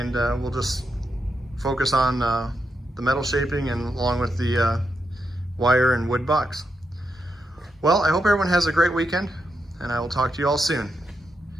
we'll just focus on the metal shaping and along with the wire and wood bucks. Well, I hope everyone has a great weekend, and I will talk to you all soon.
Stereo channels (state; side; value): normal; both; correlation 0.84